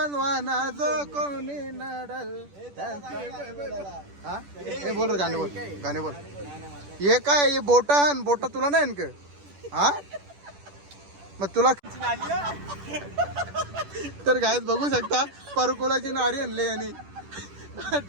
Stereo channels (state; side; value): late; left; 10 ms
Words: जो कोणी नडल. हा हे बोल रे, गाणे बोल. हे काय हे बोटा तुला नाही का? हा मग तुला तर गायत बघू शकता परकोलाची नारी आणले आणि